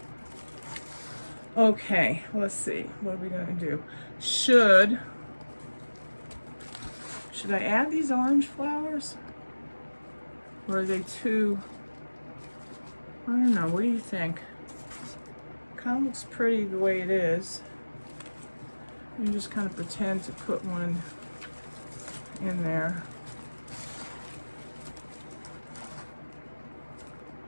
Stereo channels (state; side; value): inverted; both; correlation -1.00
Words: Okay, let's see. What are we going to do? Should I add these orange flowers? Or are they too... I don't know. What do you think? Kind of looks pretty the way it is. You just kind of pretend to put one in there.